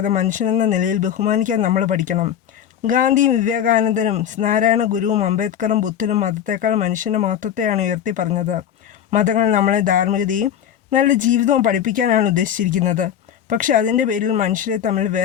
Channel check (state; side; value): quieter; right; 9.7 dB